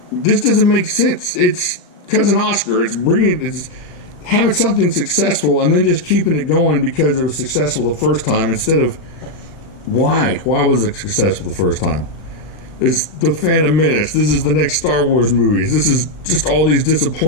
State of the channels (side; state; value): right; late; 40 ms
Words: doesn't make sense. It's Cousin Oscar. It's having something successful and then just keeping it going because it was successful the first time instead of why was it successful the first time? Is the Phantom Menace. This is the next Star Wars movies. This is just all these